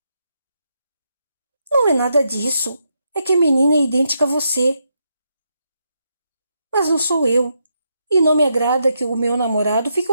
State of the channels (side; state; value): both; inverted; correlation -0.81